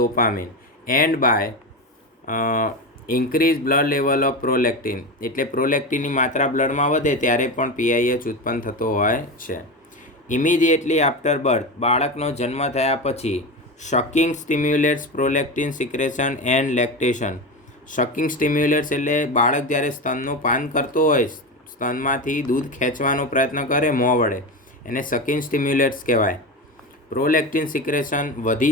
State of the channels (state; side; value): normal; both; correlation 0.21